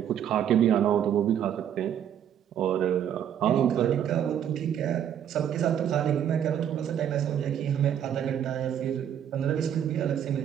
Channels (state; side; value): quieter; left; 9.6 dB